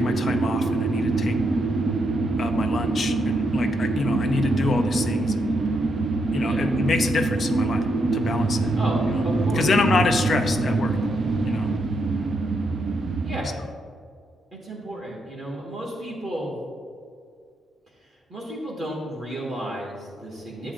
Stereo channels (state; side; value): normal; both; correlation 0.79